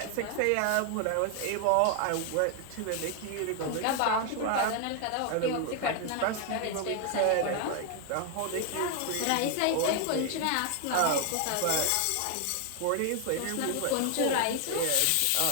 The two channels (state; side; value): different; both; correlation 0.00